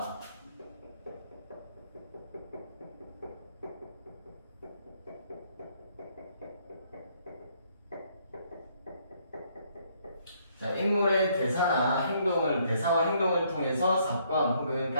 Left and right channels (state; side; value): inverted; both; correlation -0.68